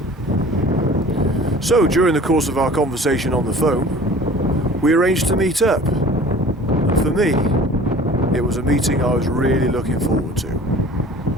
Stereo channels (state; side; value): normal; both; correlation 0.46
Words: So, during the course of our conversation on the phone, we arranged to meet up. And for me, it was a meeting I was really looking forward to.